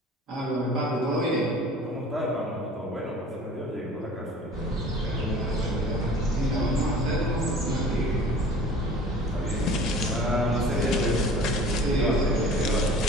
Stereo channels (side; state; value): both; normal; correlation 0.45